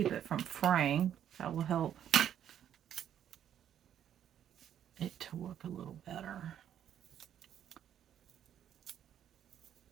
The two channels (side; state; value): left; quieter; 10.0 dB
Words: it from fraying. That will help it to work a little better.